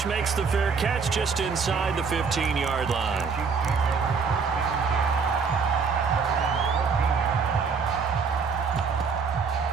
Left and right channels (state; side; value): quieter; left; 5.5 dB